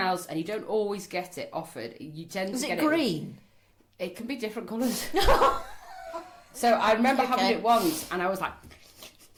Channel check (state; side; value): identical; both; correlation 1.00